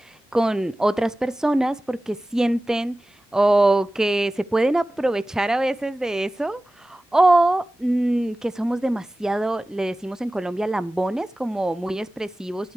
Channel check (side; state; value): both; normal; correlation 0.97